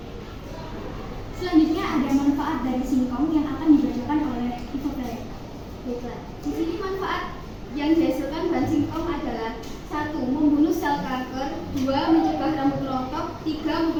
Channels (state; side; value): identical; both; correlation 1.00